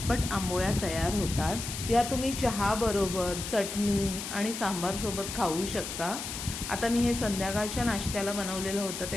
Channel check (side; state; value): left; noise; hiss, 6 dB below the sound